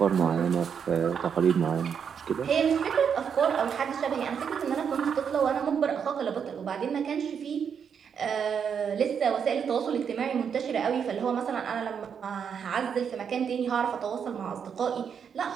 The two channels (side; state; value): left; quieter; 7.2 dB